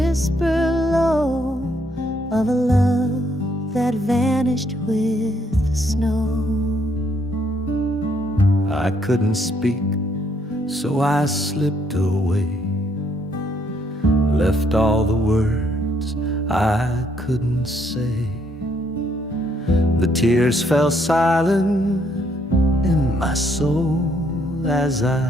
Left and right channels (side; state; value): both; normal; correlation 0.70